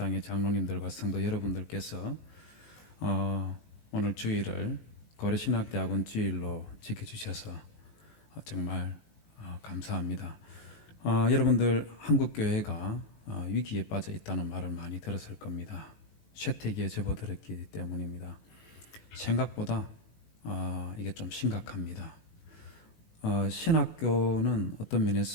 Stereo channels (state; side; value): late; right; 19 ms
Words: 장로님들과 성도 여러분들께서 오늘 주일을 고려신학대학원 주일로 지켜주셔서 정말 감사합니다. 여러분들 한국교회가 위기에 빠져 있다는 말을 많이 들었을 겁니다. 쇠퇴기에 접어들었기 때문입니다. 생각보다 이게 좀 심각합니다. 신학교는 어떤